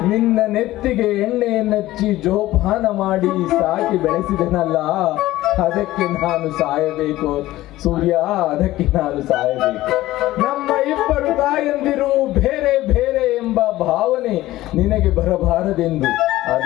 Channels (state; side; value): quieter; right; 16.2 dB